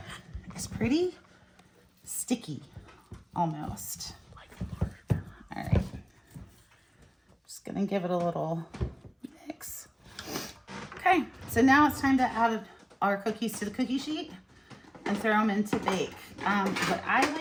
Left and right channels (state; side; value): identical; both; correlation 1.00